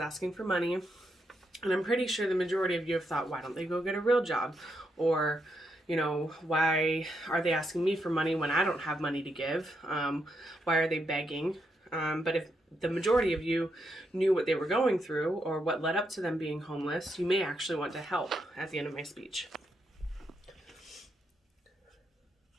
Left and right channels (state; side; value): normal; both; correlation 0.80